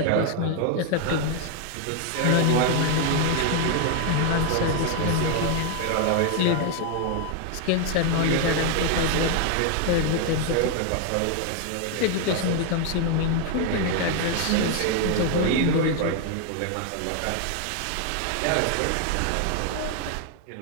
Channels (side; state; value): both; different; correlation 0.01